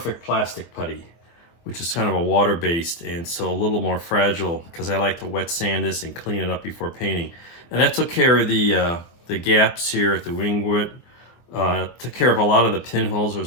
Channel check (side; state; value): right; late; 24 ms